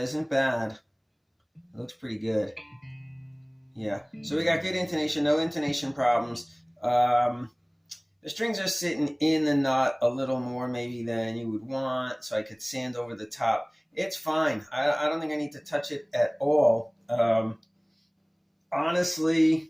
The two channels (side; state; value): both; identical; correlation 1.00